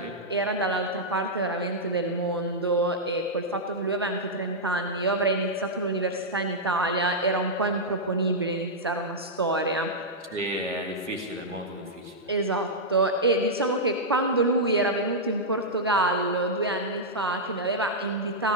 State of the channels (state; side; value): normal; both; correlation -0.08